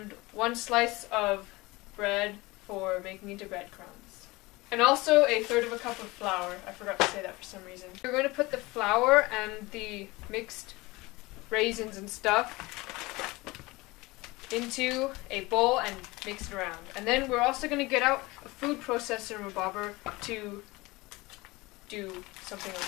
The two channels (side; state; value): right; quieter; 22.2 dB